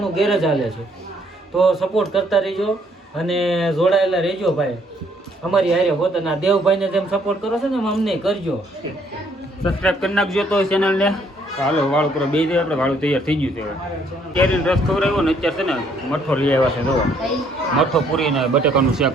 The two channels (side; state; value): both; normal; correlation 0.66